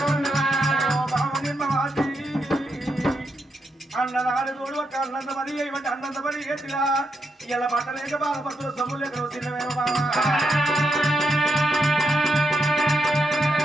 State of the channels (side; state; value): both; normal; correlation 0.82